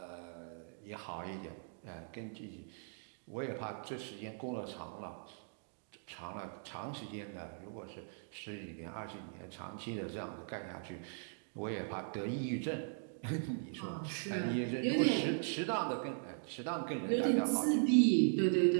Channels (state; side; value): silent; left; digital silence